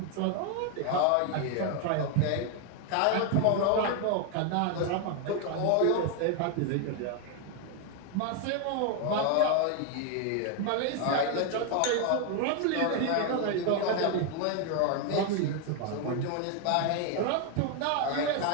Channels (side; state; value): both; different; correlation 0.01